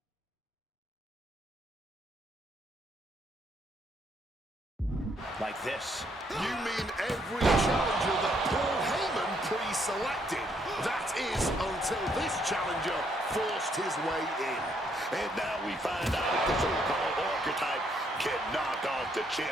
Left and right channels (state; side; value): normal; both; correlation 0.71